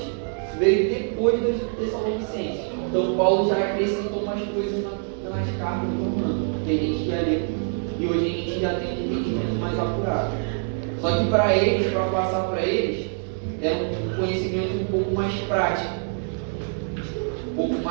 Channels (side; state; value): left; silent; 57 dB below the other